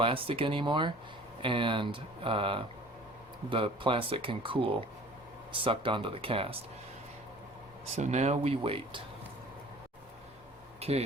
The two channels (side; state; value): both; normal; correlation 0.47